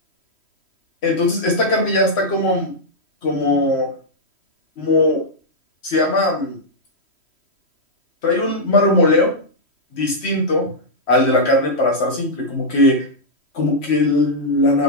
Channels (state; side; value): late; right; 3.1 ms